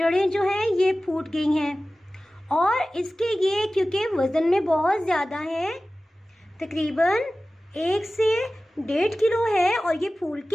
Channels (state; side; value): normal; both; correlation 0.96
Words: जो हैं ये फूट गई हैं और इसके ये क्योंकि वज़न में बहुत ज़्यादा है, तकरीबन 1 से 1.5 किलो है और ये फूल